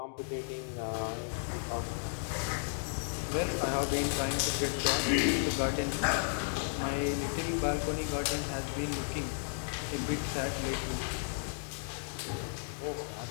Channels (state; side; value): silent; right; digital silence